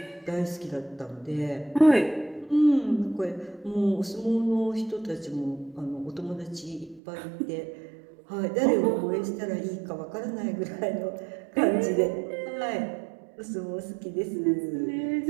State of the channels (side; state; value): left; drops out; at 7.0 s